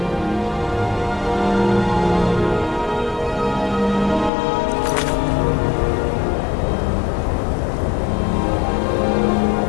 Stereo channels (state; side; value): drops out; right; at 4.3 s